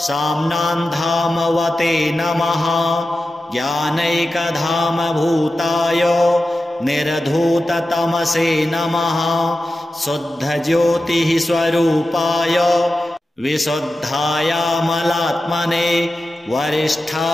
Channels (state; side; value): normal; both; correlation 0.93